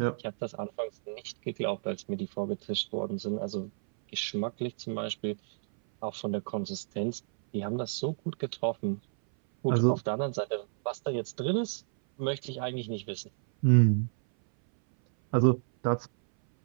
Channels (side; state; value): left; silent; 57 dB below the other